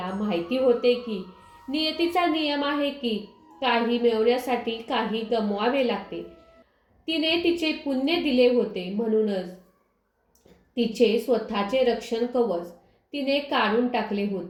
माहिती होते की नियतीचा नियम आहे की काही मिळवण्यासाठी काही गमवावे लागते. तिने तिचे पुण्य दिले होते, म्हणूनच तिचे स्वतःचे रक्षण कवच तिने काढून टाकले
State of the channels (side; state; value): both; identical; correlation 1.00